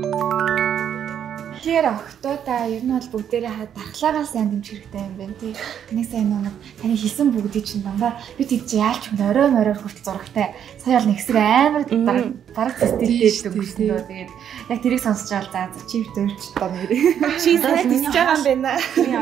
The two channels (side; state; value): left; quieter; 9.1 dB